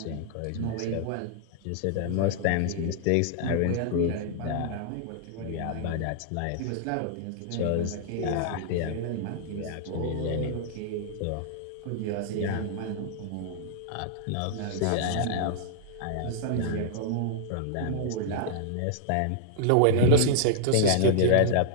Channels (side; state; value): both; different; correlation -0.01